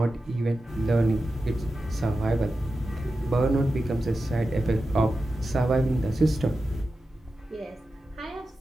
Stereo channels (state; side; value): normal; both; correlation 0.92